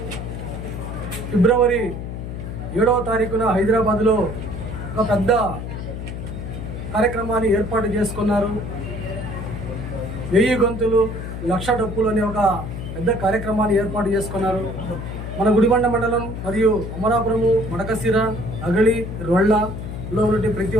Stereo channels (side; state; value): left; noise; hum, 7 dB below the sound